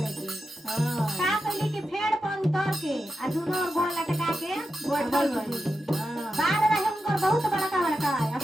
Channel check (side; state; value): both; normal; correlation 0.89